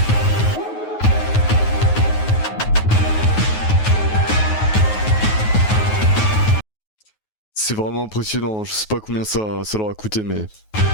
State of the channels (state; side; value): late; right; 9.4 ms